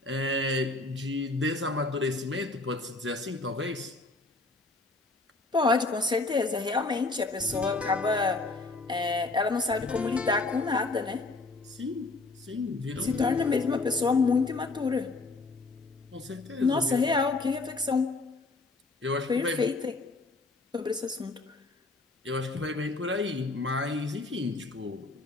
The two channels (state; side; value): quieter; right; 3.4 dB